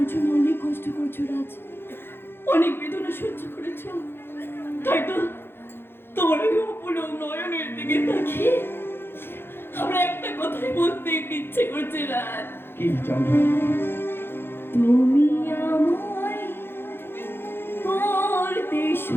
জন্য অনেক কষ্ট করছো রাজ, অনেক বেদনা সহ্য করেছো, তাই তো তোমার ওই অপলক নয়নের দিকে তাকিয়ে আমরা একটা কথাই বলতে ইচ্ছে করছে রাজ। কি চন্দ্র? তুমি আমায় করতে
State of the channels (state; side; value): late; right; 0.11 ms